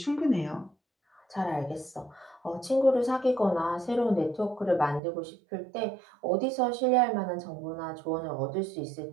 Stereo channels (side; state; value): left; drops out; at 5.0 s